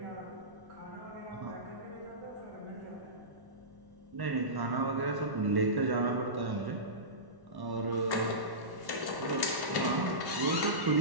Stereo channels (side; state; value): left; late; 1.1 ms